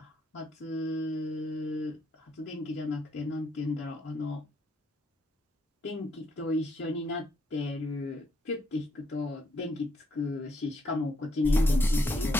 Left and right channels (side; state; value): both; normal; correlation 0.75